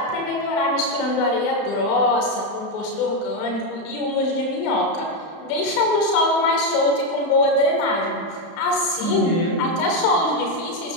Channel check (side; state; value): right; late; 30 ms